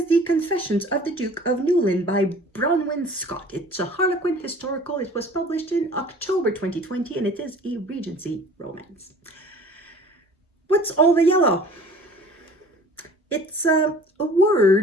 The Confessions of the Duke of Newlyn by Bronwyn Scott. It's a Harlequin historical. It was published in October 2020 and it is a Regency romance. What's all the yellow? It's a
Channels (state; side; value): normal; both; correlation 0.47